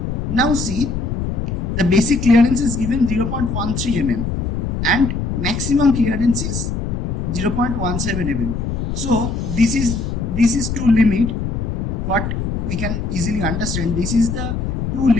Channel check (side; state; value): left; noise; rumble, 2 dB below the sound